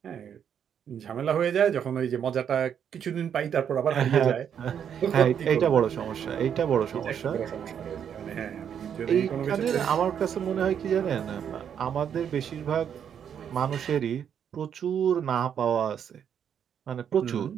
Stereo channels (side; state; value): left; quieter; 8.4 dB